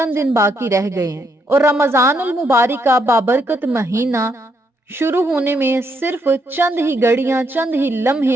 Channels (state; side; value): normal; both; correlation 0.75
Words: دن باقی رہ گئے ہیں، اور رمضان المبارک کا بابرکت مہینہ شروع ہونے میں صرف چند ہی گھڑیاں، چند ہی